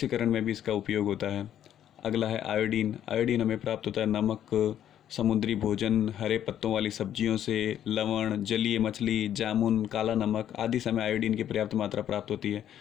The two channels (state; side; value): quieter; right; 10.6 dB